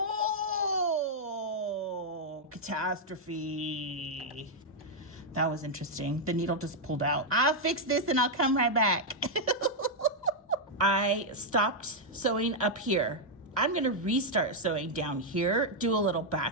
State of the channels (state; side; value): normal; both; correlation -0.03